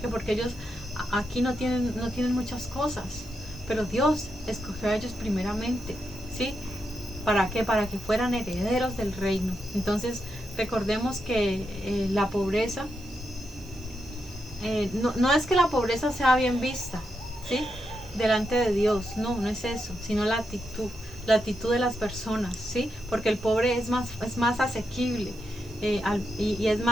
Porque ellos aquí no tienen muchas cosas, pero Dios escogió a ellos primeramente, ¿sí? ¿Para qué? Para que fueran herederos del reino. Entonces, recordemos que la pobreza, no es que la pobreza sea bien vista, ¿sí? Delante de Dios, no es eso, sino la actitud de las personas, ¿sí? Porque el pobre es más asequible y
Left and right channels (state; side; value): noise; right; hiss, 25 dB below the sound